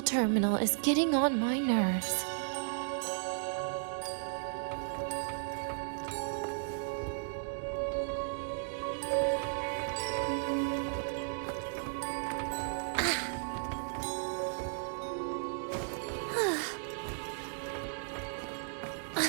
is getting on my nerves.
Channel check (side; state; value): left; silent; digital silence